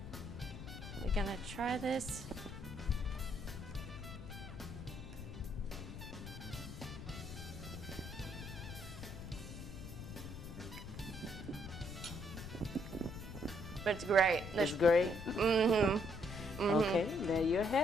We're gonna try this. But it's great. It's great? Mm-hmm. Okay, there you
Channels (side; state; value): left; noise; rumble, 10 dB below the sound